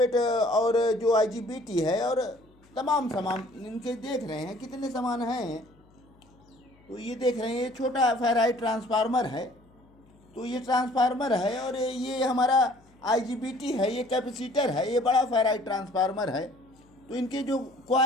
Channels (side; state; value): left; noise; hum, 29 dB below the sound